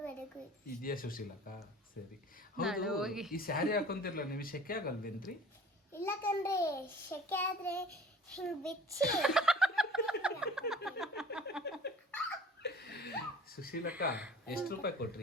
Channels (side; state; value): both; normal; correlation 0.45